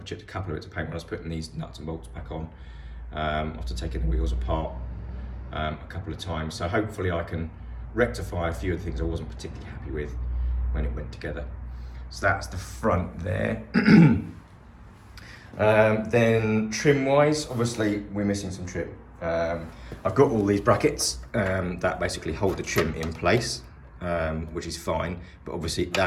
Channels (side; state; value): both; identical; correlation 1.00